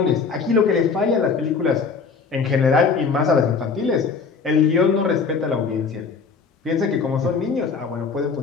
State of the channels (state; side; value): quieter; right; 5.2 dB